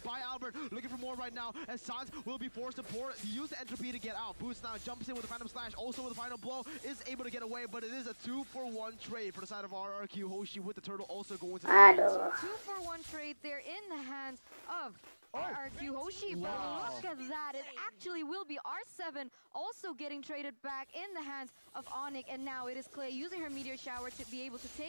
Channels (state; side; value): inverted; both; correlation -1.00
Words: by Albert. Looking for more right now, as Sans will be forced to use the entropy to get out. Boost now jumps in with the Phantom Slash, also with the final blow, is able to get away, but it is a 2-for-1 trade for the side of RRQ. Hoshi with the turtle also going to the Aduh. 2-for-1 trade there in the hands of RRQ. Hoshi, but look at that. It actually will be R7 also getting traded back in the hands of Onic, and now it is Clay using her Meteor Shower to be able to